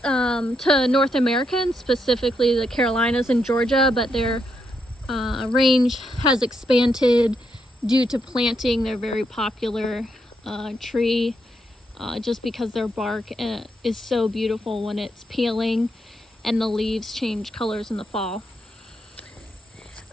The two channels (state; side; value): normal; both; correlation 0.80